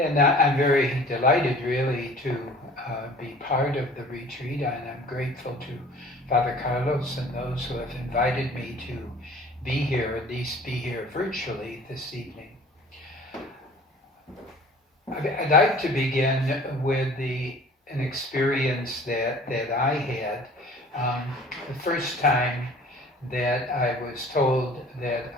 I'm very delighted really to be part of the retreat, and I'm grateful to Father Carlos and those who have invited me to be here, at least be here virtually this evening. I'd like to begin with an experience that I had. The first time that I was told that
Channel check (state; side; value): normal; both; correlation 0.48